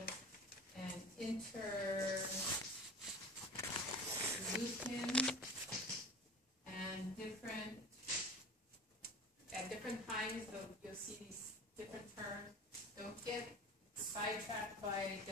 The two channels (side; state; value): both; normal; correlation 0.36